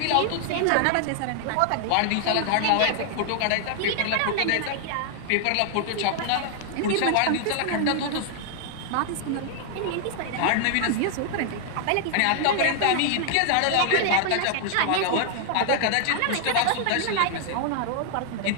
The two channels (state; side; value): different; both; correlation 0.00